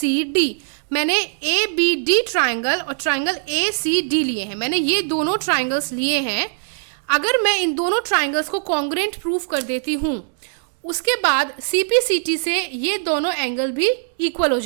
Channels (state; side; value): silent; left; 65 dB below the other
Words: मैंने ABD ट्राइंगल और ट्राइंगल ACD लिए हैं। मैंने ये दोनों ट्राइंगल्स लिए हैं। अगर मैं इन दोनों ट्राइंगल्स को कॉन्ग्रुएंट प्रूफ कर देती हूँ, उसके बाद CPCT से ये दोनों एंगल भी इक्वल हो